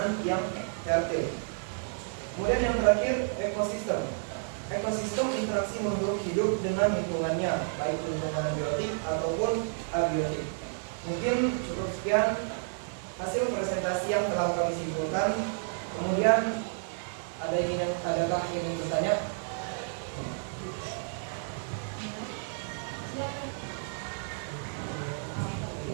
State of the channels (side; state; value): left; silent; digital silence